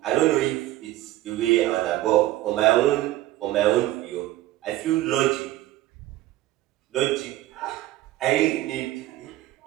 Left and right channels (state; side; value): quieter; left; 15.5 dB